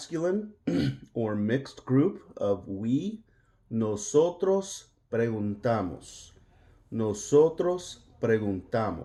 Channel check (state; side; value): identical; both; correlation 1.00